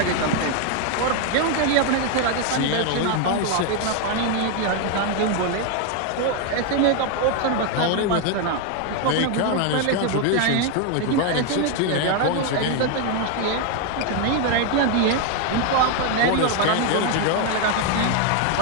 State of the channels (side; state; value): both; different; correlation 0.01